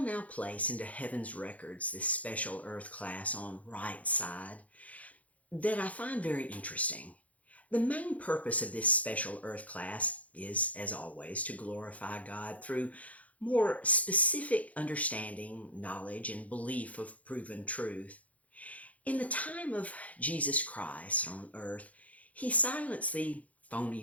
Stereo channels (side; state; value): right; late; 0.069 ms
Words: now place into heaven's records this special Earth class on right side that I find very interesting. The main purpose of this special Earth class is, as always, to glorify God through more specific understanding, knowledge, and belief of proven truth. In the time of Jesus Christ on earth, he silenced the